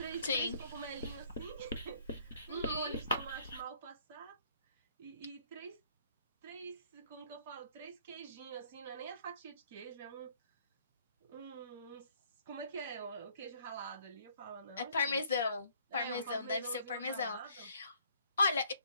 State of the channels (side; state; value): both; inverted; correlation -0.62